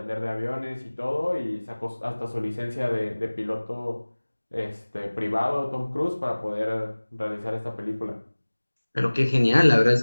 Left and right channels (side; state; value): both; inverted; correlation -1.00